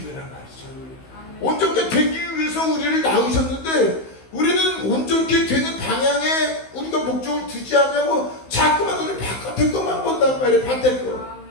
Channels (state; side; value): late; right; 16 ms